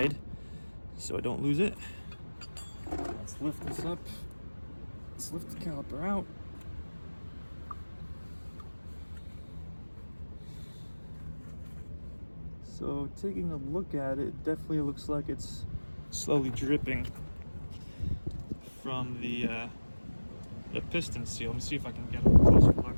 so I don't lose it. Let's lift this up. Let's lift the caliper out. So taking a look at it, it definitely looks like it's slowly dripping from the piston seal. Let me see if I can get a closer look on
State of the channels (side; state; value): both; inverted; correlation -1.00